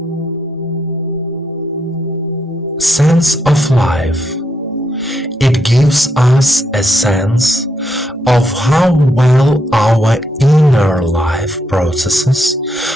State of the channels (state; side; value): normal; both; correlation 0.78